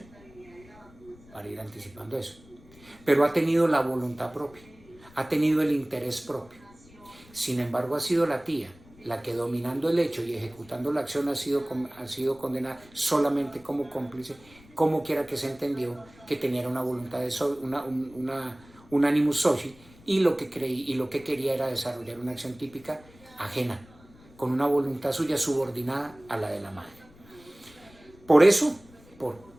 para ir anticipando eso, pero ha tenido la voluntad propia, ha tenido el interés propio. Sin embargo, ha sido la tía la que, dominando el hecho y ejecutando la acción, ha sido condenada solamente como cómplice, como quiera que se entendió que tenía una voluntad de un animus soci, y lo que quería era desarrollar una acción típica ajena, con una voluntad suya subordinada a la de la madre. Por eso, por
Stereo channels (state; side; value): noise; left; rumble, 24 dB below the sound